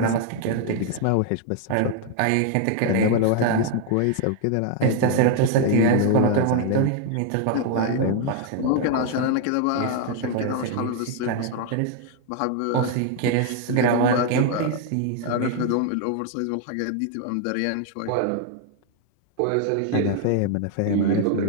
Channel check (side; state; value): both; different; correlation 0.00